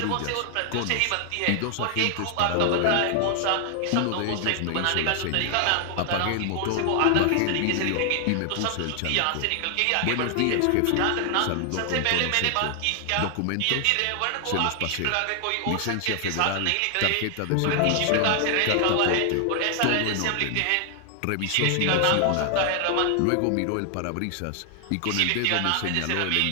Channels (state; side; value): different; both; correlation 0.00